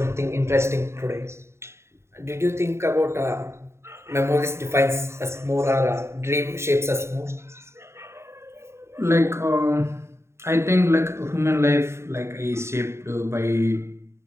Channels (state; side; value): late; left; 0.13 ms